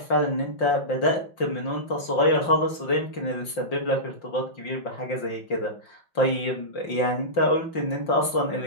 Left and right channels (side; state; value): right; late; 5.7 ms